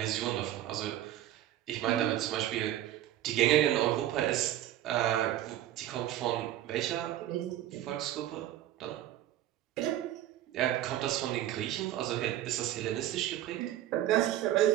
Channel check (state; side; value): quieter; left; 12.9 dB